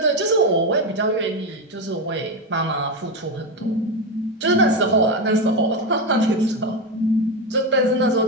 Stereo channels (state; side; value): normal; both; correlation 0.13